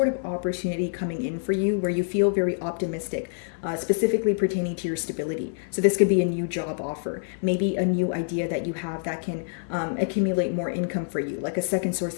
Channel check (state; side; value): silent; right; 60 dB below the other